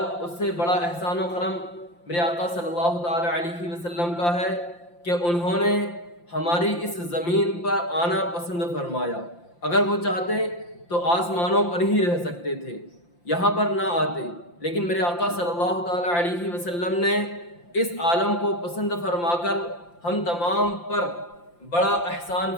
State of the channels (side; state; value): right; late; 5.8 ms